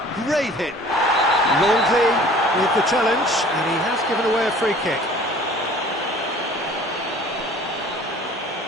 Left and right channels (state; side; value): normal; both; correlation 0.49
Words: Great hit. Longley with the challenge, and he has given away a free kick.